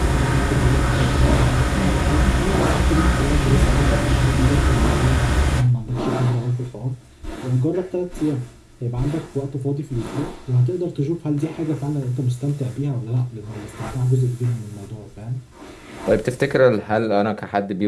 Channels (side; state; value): both; identical; correlation 1.00